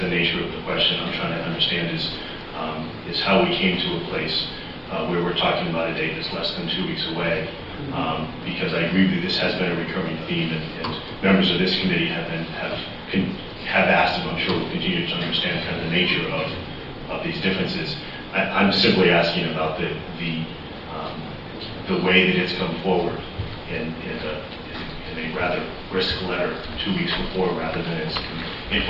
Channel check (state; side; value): identical; both; correlation 1.00